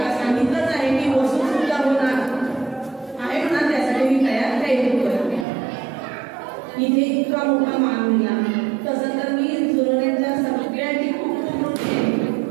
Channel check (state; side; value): drops out; left; at 5.5 s